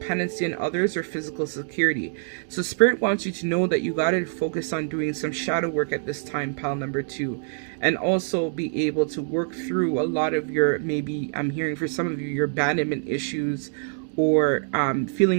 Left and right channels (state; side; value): silent; left; digital silence